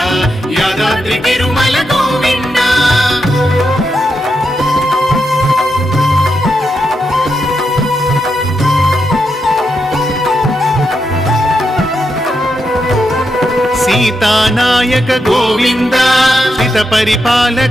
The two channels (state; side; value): normal; both; correlation 0.84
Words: యాదాద్రి తిరుమల గోవింద. సీతానాయక గోవింద, శ్రిత